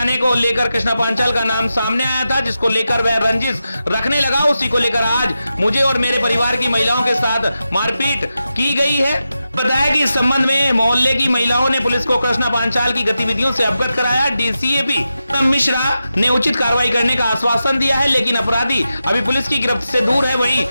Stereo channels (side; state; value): both; inverted; correlation -0.90